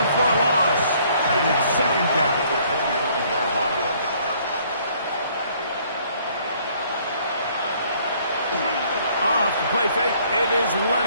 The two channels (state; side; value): inverted; both; correlation -0.61